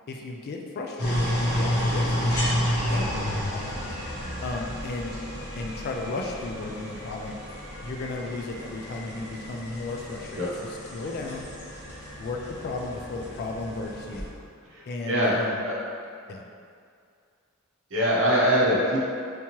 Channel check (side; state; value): both; normal; correlation 0.34